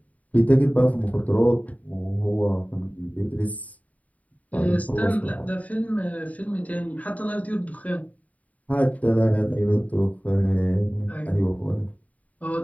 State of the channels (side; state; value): right; late; 0.070 ms